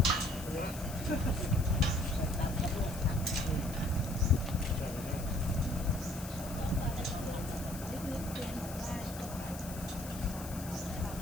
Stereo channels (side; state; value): left; noise; hiss, 13 dB below the sound